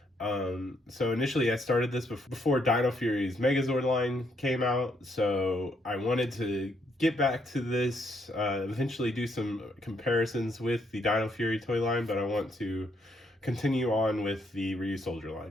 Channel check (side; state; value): both; normal; correlation 0.73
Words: So initially I started this before Dino Fury's Megazord line came out, so I wanted to get back to this, eventually do some comparisons with the Dino Fury toy line, but I want to continue on with the Ryusoulger